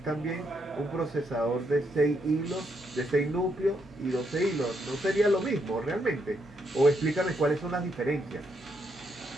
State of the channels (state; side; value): normal; both; correlation 0.77